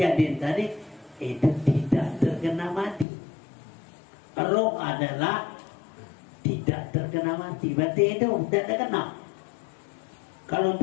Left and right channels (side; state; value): right; drops out; at 3.1 s